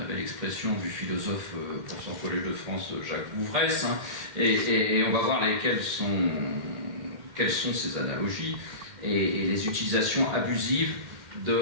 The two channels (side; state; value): left; late; 2.1 ms